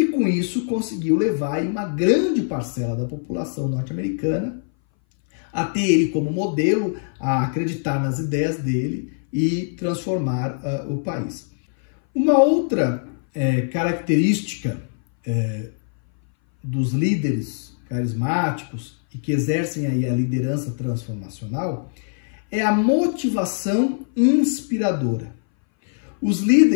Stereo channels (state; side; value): silent; right; 60 dB below the other